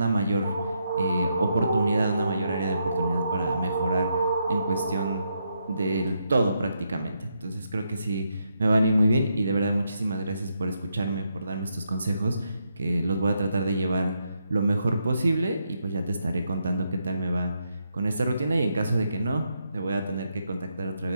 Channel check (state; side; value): inverted; both; correlation -0.80